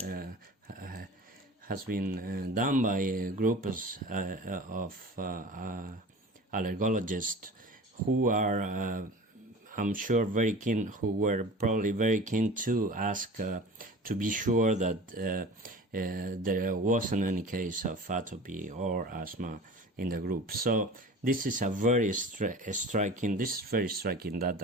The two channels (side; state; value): both; normal; correlation 0.39